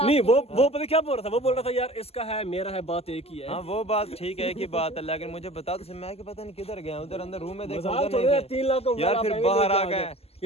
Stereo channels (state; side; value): late; right; 0.29 ms